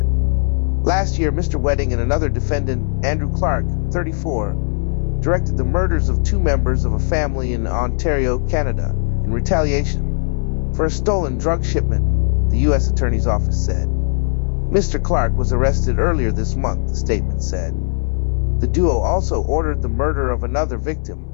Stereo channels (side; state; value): right; silent; 63 dB below the other